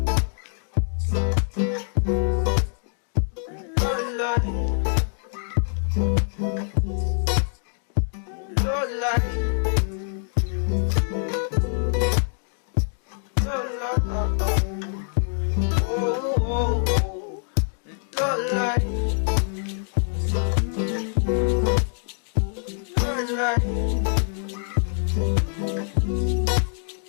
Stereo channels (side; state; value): right; silent; digital silence